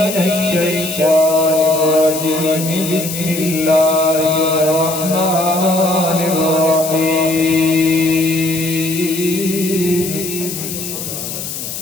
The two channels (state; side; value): noise; left; hiss, 7 dB below the sound